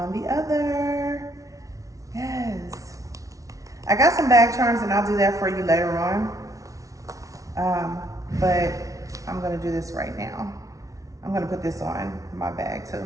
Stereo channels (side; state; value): left; late; 0.17 ms